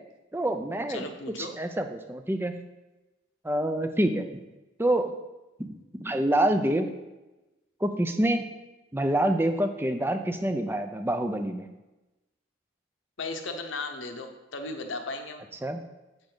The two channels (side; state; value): both; normal; correlation 0.77